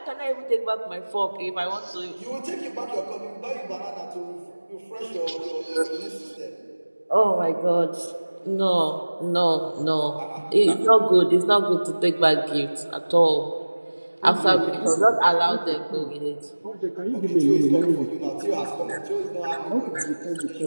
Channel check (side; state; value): both; inverted; correlation -1.00